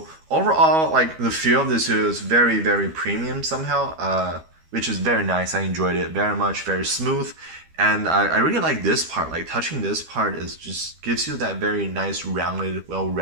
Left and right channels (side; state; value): left; late; 12 ms